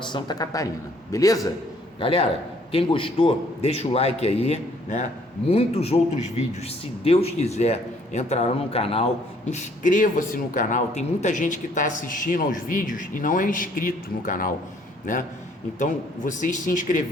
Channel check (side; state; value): both; normal; correlation 0.62